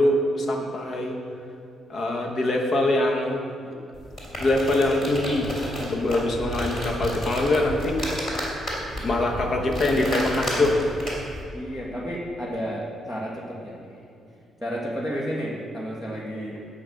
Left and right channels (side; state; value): both; normal; correlation 0.79